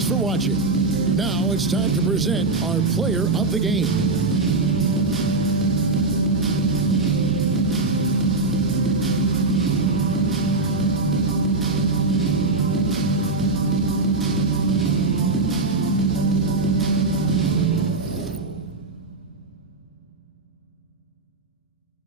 for watching. Now it's time to present our player of the game.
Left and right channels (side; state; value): left; quieter; 3.3 dB